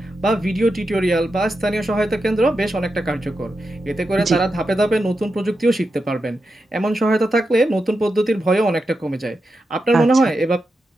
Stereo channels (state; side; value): normal; both; correlation 0.88